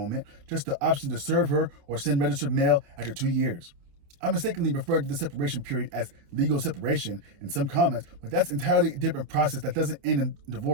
just the option to serve her or send registered mail after 2 years. I mistakenly referred to the separation period as legal separation in some comments, but that's entirely a different process that doesn't end in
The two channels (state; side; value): late; left; 29 ms